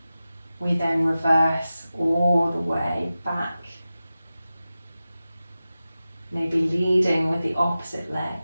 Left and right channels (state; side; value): inverted; both; correlation -0.94